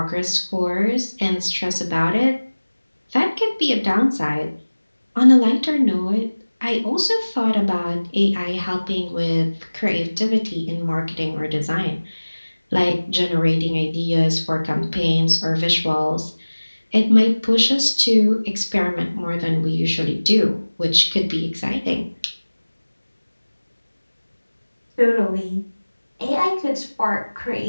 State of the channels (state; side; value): inverted; both; correlation -1.00